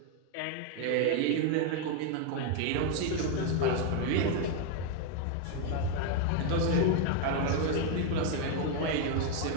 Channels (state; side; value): different; both; correlation 0.01